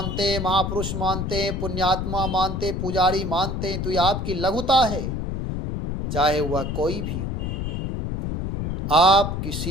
हैं, महापुरुष मानते हैं, पुण्यात्मा मानते, पुजारी मानते हैं, तो यह आपकी लघुता है, चाहे वह कोई भी हो। आप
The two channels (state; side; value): noise; left; rumble, 2 dB below the sound